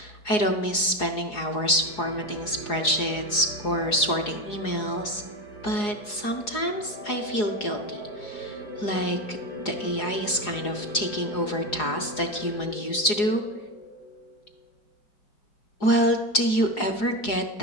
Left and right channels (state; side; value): late; right; 4.8 ms